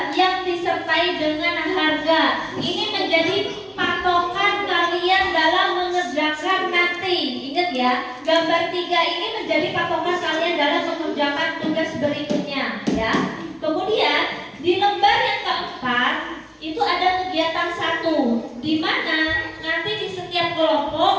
yang disertai dengan harga. Ini menjadi patokan kalian dalam mengerjakan nanti. Ingat ya, gambar 3 ini menjadi patokan kalian dalam mengerjakan tugas berikutnya ya. Kemudian di lembar yang keempat itu ada kegiatan 1, di mana nanti di setiap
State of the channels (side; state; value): both; identical; correlation 1.00